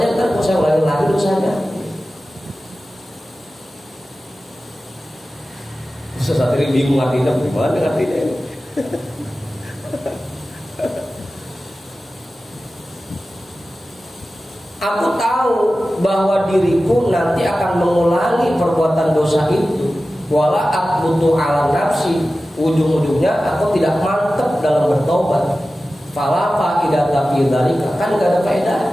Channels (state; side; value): normal; both; correlation 0.95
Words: kan kalau saya ulangi lagi dosanya. Saat ini bingung artinya, gimana artinya ini? Aku tahu bahwa diriku nanti akan mengulangi perbuatan dosa itu. Wala aqbutu ala nafsi, ujung-ujungnya aku tidak mantep dalam bertobat. Fala faidata fi dzalika, kan gak ada faedah.